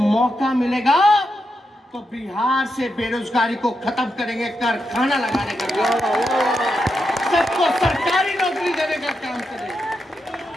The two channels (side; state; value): both; normal; correlation 0.85